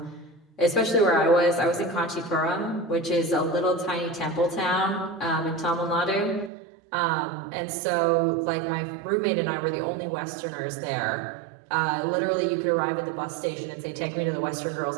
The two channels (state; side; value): drops out; left; at 6.5 s